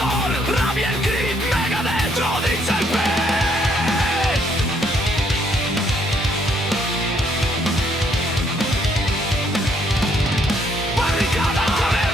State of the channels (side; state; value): both; normal; correlation 0.69